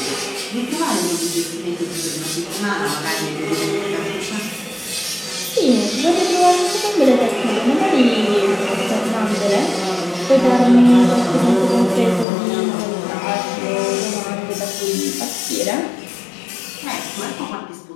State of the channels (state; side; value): drops out; right; at 12.2 s